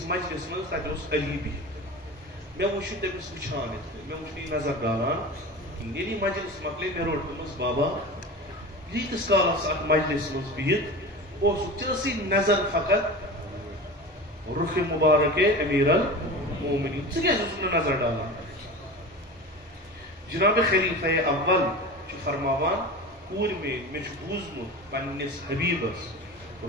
مجلس منٛز تتہِ اوس علی بِہِتھ مےٚ وٕچھ یہِ تٔمِس وٕچھان مےٚ وٕچھ نہٕ یہِ نظر ڈالان ییٚلہِ یہِ مجلس مۄکلے مےٚ روٚٹ دوٚپمس بابا ییٖتِس کالس اتھ مجلس منٛز بِہِتھ اوسُکھ ژےٚ ٲسٕے نظر فقط رُخ مبارک امیر المومنین ژٕ کیٛازِ اوسُکھ نہٕ نظر ڈالان جناب خلیفہ اول چھُ فرماوان کوٗر مےٚ چھُ بوٗزمُت پننِس حبیبس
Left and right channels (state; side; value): normal; both; correlation 0.31